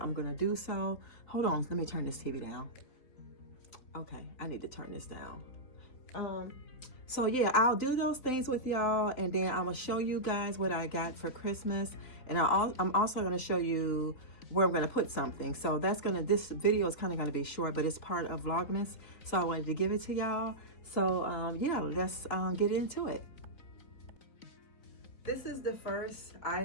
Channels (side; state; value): right; late; 4.1 ms